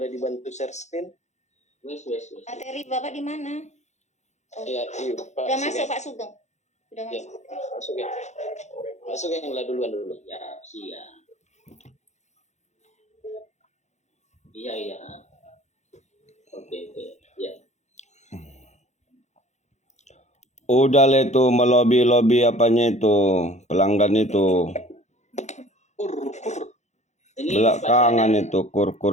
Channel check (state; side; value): late; right; 0.33 ms